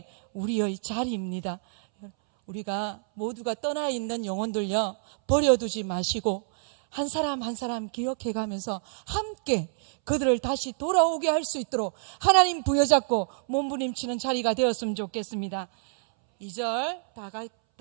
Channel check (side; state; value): left; silent; 60 dB below the other